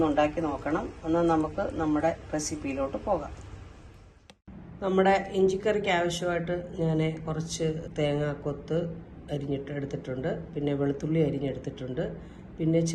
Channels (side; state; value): both; identical; correlation 1.00